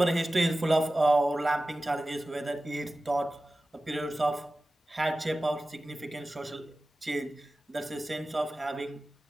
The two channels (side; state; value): both; normal; correlation 0.95